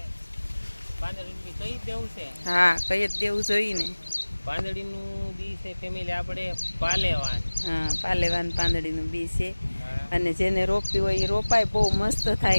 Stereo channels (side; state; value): both; inverted; correlation -1.00